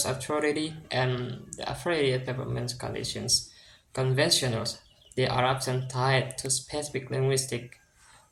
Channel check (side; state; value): both; identical; correlation 1.00